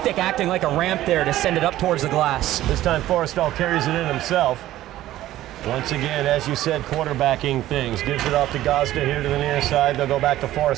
acting like a ramp there to send it up towards the glass. This time Forrestal carries it in himself. Once again, as you said, quarterbacking things. Gives it off to Gosda here to the near side. They'll go back to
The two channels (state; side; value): quieter; left; 14.4 dB